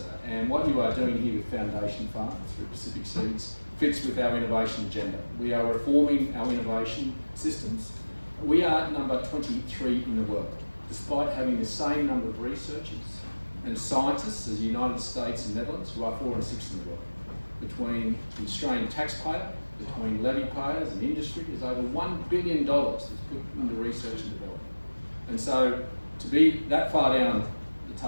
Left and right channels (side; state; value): both; inverted; correlation -1.00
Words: And what you are doing here with Foundation Farms through Pacific Seeds fits with our innovation agenda. We are reforming our innovation systems. We are number 23 in the world, despite having the same number of researchers and scientists as the United States and Netherlands, who are 4 and 6 in the world. Between the Australian taxpayer, between levy payers and industry, there's over $1 billion that's put into research and development. And so to be that far down the